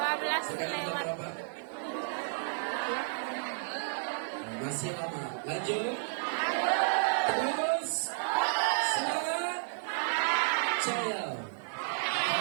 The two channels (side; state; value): left; silent; digital silence